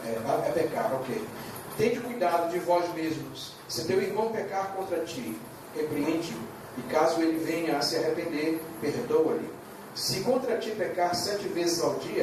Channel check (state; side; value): identical; both; correlation 1.00